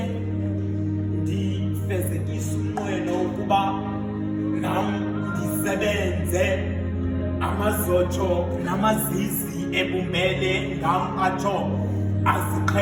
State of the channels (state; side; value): identical; both; correlation 1.00